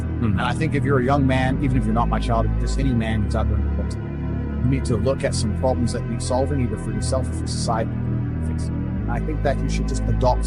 And I think if you're a young man, even if you're not my child, if just any man who's out there in the world, you need to look at some problems that need solving, either for yourself or for society. I think that you should just adopt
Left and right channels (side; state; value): both; identical; correlation 1.00